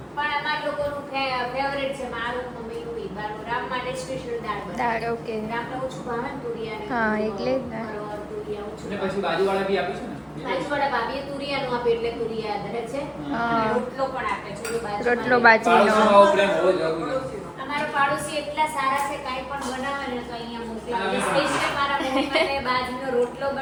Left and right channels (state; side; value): identical; both; correlation 1.00